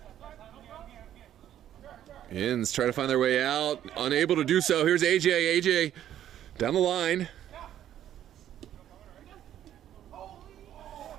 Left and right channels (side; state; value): left; quieter; 11.2 dB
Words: Yinz trying to find their way out, unable to do so. Here's AJ. AJ down the line.